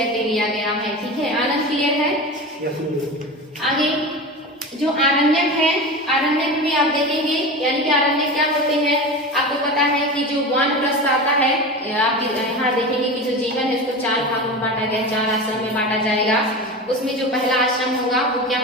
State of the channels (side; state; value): both; normal; correlation 0.28